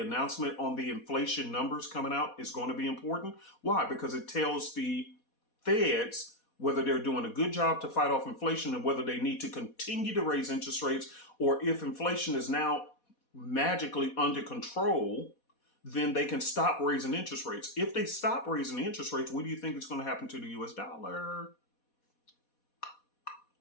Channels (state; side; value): late; right; 4.2 ms